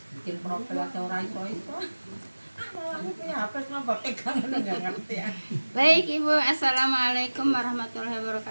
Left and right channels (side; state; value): both; inverted; correlation -1.00